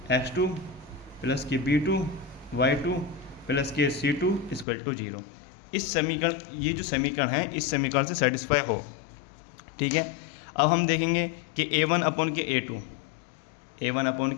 x2 प्लस के B2 y2 प्लस के C2 इक्वल टू 0। इस समीकरण, ये जो समीकरण है इस समीकरण से सेटिस्फाई हो, ठीक है। अब हम देखेंगे कि A1 अपॉन के A2, A1 अपॉन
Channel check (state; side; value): drops out; right; at 4.7 s